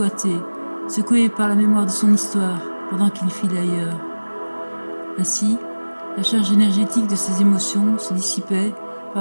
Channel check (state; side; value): inverted; both; correlation -1.00